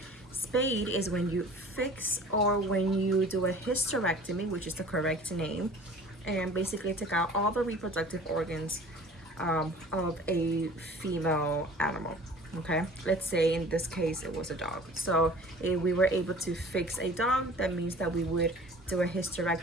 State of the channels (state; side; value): normal; both; correlation 0.46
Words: Spayed is when you fix or when you do a hysterectomy, which is the correct name, and basically take out all the reproductive organs of a female animal. Okay, let's say in this case it was a dog. So if we were able to fix a dog, that means that we would do a